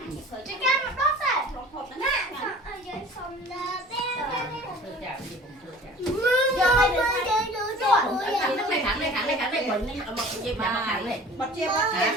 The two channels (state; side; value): normal; both; correlation 0.44